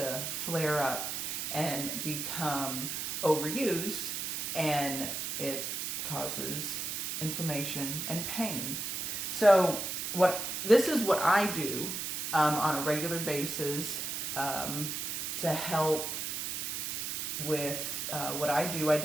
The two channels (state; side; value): noise; right; hiss, 3 dB below the sound